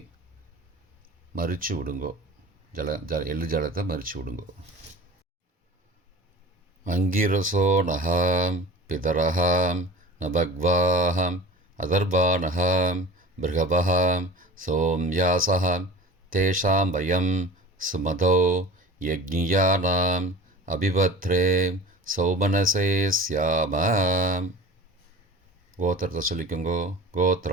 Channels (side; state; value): both; normal; correlation 0.38